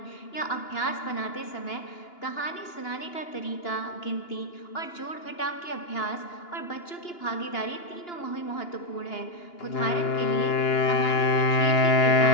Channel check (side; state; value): right; late; 2.9 ms